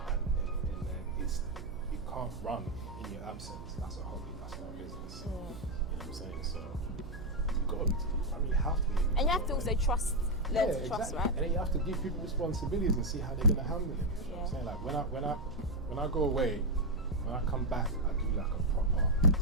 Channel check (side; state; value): right; noise; hum, 13 dB below the sound